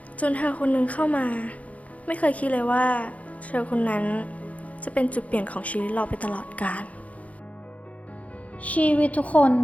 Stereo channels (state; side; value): late; right; 0.068 ms